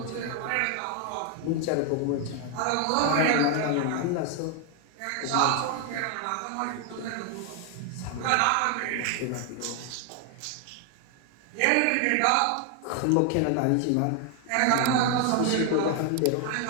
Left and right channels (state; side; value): different; both; correlation 0.00